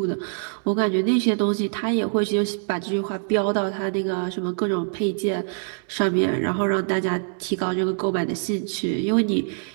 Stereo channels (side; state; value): left; silent; digital silence